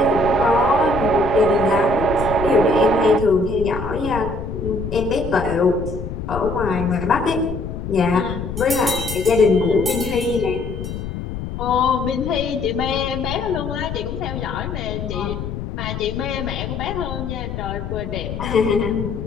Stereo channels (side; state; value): left; noise; rumble, 6 dB below the sound